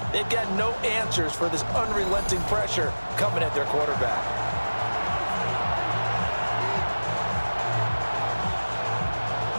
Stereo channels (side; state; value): both; inverted; correlation -1.00